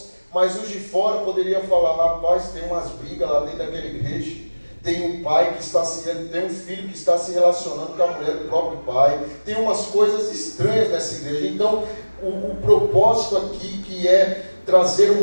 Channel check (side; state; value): both; inverted; correlation -1.00